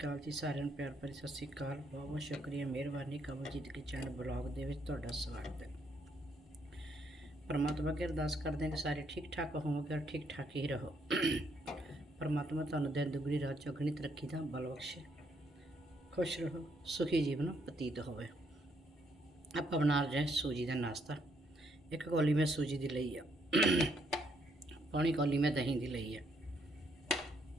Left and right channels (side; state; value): both; normal; correlation 0.72